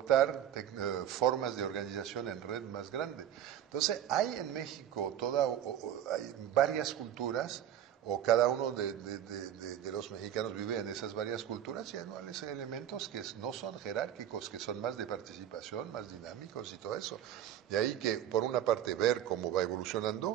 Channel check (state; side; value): quieter; left; 10.6 dB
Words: formas de organización en red más grande. Entonces, hay en México hay varias culturas, o cada uno de los mexicanos vive en esas varias culturas, y hay elementos que no son jerárquicos, que son más de participación, más dinámicos y todo eso. De ahí que, por una parte, ver cómo va